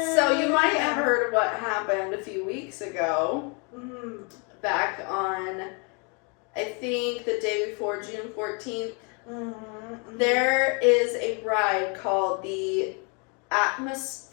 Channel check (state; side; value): quieter; right; 34.2 dB